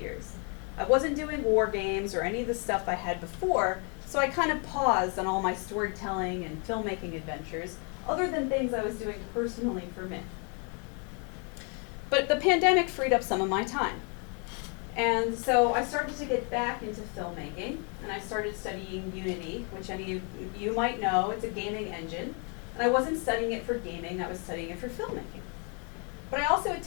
years. I wasn't doing war games or any of the stuff I had before, so I kind of paused on all my storytelling and filmmaking adventures, other than things I was doing personally for me. But the pandemic freed up some of my time. And so I started to get back into filmmaking, and I started studying Unity, which any of you might know. It's a gaming engine. And I wasn't studying it for gaming, I was studying it for filmmaking. But I also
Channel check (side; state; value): right; quieter; 37.2 dB